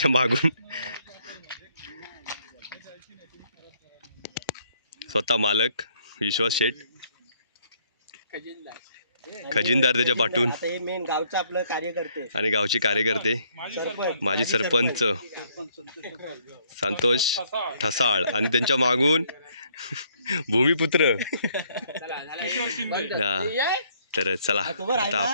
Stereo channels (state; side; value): inverted; both; correlation -0.66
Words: मागून. स्वतः मालक विश्वास शेठ, खजिनदार त्याच्या पाठून, हे मेन गावचं आपलं कार्यकर्ते आणि गावचे कार्यकर्ते माजी सरपंच संतोष ठसाळ, आणि त्यांच्या मागून भूमिपुत्र. हा, तर चला आता